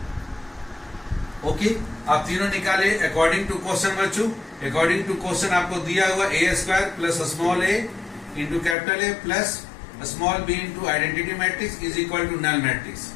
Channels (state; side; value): drops out; right; at 8.8 s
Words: ओके, आप तीनों निकाले अकॉर्डिंग टू क्वेश्चन बच्चों। अकॉर्डिंग टू क्वेश्चन आपको दिया हुआ A square plus small A into capital A plus small B into identity matrix is equal to null matrix.